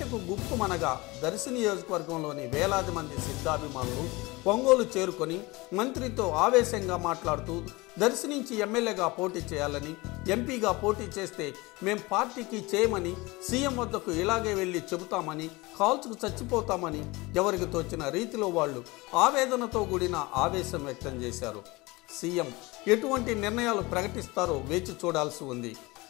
గుప్పుమనగా దర్శి నియోజకవర్గంలోని వేలాది మంది సిద్ధాభిమానులు ఒంగోలు చేరుకొని మంత్రితో ఆవేశంగా మాట్లాడుతూ దర్శి నుంచి ఎమ్మెల్యేగా పోటీ చేయాలని, ఎంపీగా పోటీ చేస్తే మేం పార్టీకి చేయమని, సీఎం వద్దకు ఇలాగే వెళ్ళి చెబుతామని, కాల్చుకు చచ్చిపోతామని ఎవరికి తోచిన రీతిలో వాళ్ళు ఆవేదనతో కూడిన ఆవేశం వ్యక్తం చేశారు. సీఎం ఎటువంటి నిర్ణయాలు ప్రకటిస్తారో వేచి చూడాల్సి ఉంది.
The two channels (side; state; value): right; quieter; 23.0 dB